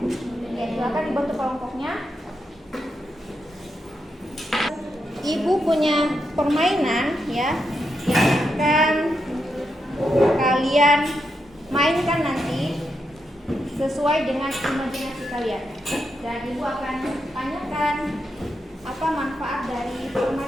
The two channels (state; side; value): normal; both; correlation 0.84